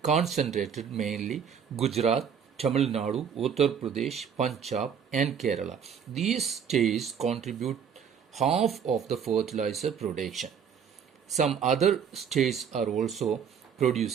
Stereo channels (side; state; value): left; quieter; 7.5 dB